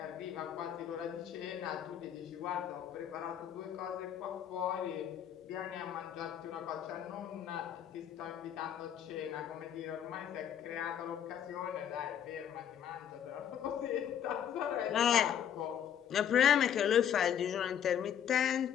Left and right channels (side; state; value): right; quieter; 9.3 dB